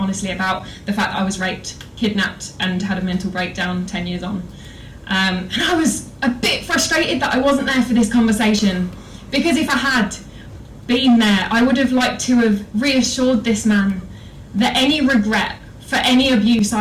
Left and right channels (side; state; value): both; identical; correlation 1.00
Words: about the fact that I was raped, kidnapped and had a mental breakdown 10 years on. And I was a bit frustrated that I wasn't there for this conversation, because if I had been there, I would have liked to have reassured this man that any regret for any abuse